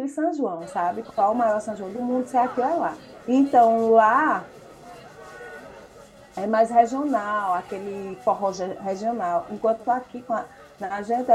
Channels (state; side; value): identical; both; correlation 1.00